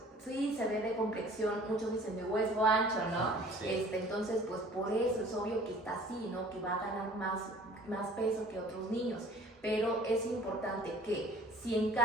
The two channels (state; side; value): normal; both; correlation 0.49